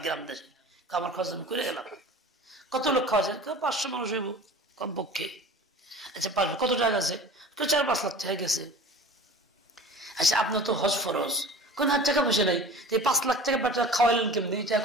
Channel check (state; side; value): normal; both; correlation 0.39